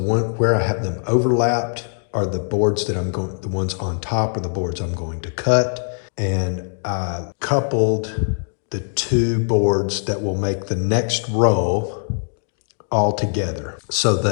where I have them overlapped are the boards that the ones on top are the boards I'm going to cut. And I coupled the 2 boards that will make the next row all together. So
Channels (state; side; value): silent; right; 65 dB below the other